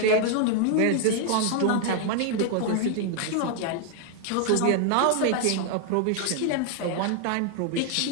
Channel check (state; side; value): different; both; correlation 0.00